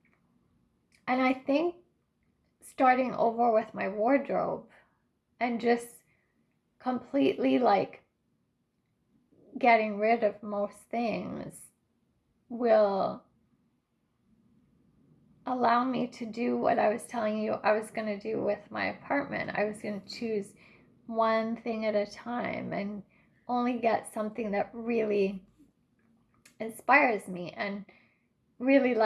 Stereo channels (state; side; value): identical; both; correlation 1.00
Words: And I think starting over with my wardrobe and just completely like getting rid of most things will allow me to do what I was telling you I was going to do with my apartment. I was going to choose one thing at a time and only get something that really inspires me and really